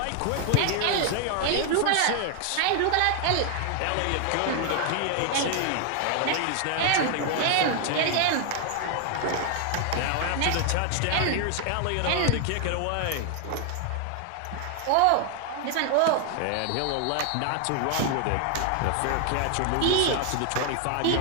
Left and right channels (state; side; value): different; both; correlation 0.00